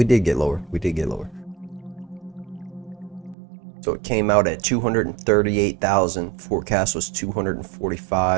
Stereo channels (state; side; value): drops out; left; at 3.4 s